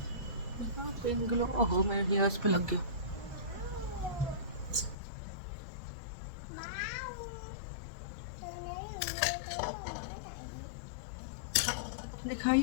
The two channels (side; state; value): right; drops out; at 5.0 s